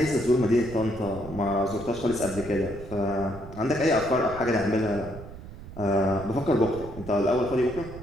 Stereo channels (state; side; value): noise; right; rumble, 13 dB below the sound